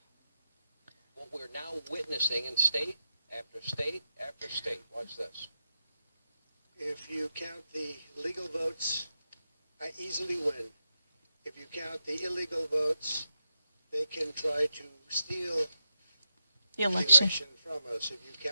What we're now witnessing in state after state after state. Watch this. If you count the legal votes, I easily win. If you count the illegal votes, they can try to steal The the election. election from us. If you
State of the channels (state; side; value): inverted; both; correlation -0.87